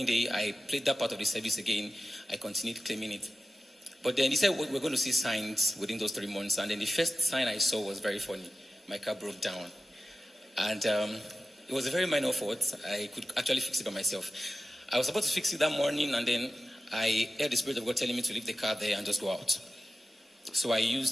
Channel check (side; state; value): both; normal; correlation 0.93